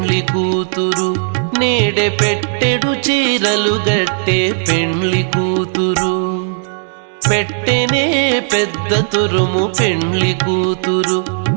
కూతురు. నేడే పెట్టెడు చీరలు గట్టే పెండ్లి కూతురు. పెట్టెనే పెద్ద తురుము పెండ్లి కూతురు.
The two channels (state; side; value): silent; left; digital silence